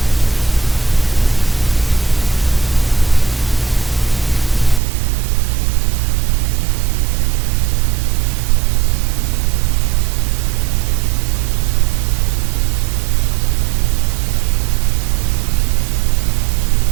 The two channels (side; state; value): left; drops out; at 4.8 s